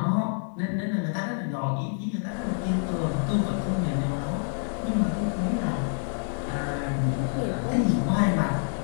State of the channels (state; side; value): silent; right; 60 dB below the other